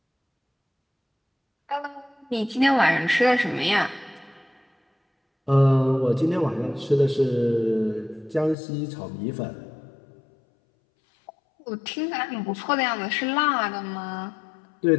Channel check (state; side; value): drops out; right; at 8.6 s